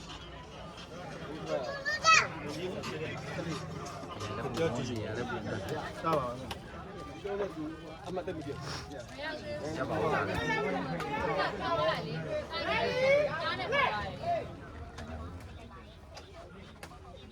ပြောကြည့်ရတယ်ပြန်တာပါပြောလို့သူအမတ်တက်ပြီရပါဘူးလား ထားလိုက်လေအားနဲ့ပါလိုက်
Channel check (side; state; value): both; identical; correlation 1.00